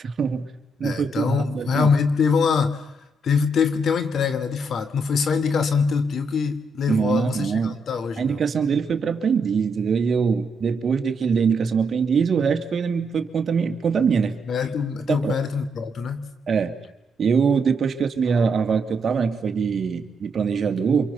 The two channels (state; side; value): normal; both; correlation 0.77